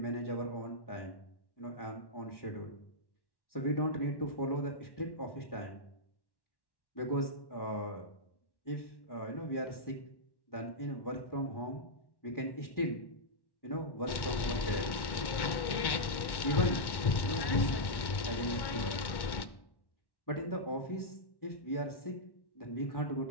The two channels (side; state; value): right; late; 1.1 ms